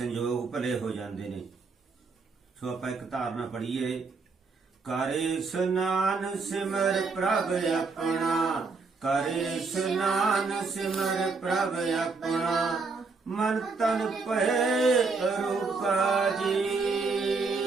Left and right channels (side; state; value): left; quieter; 4.3 dB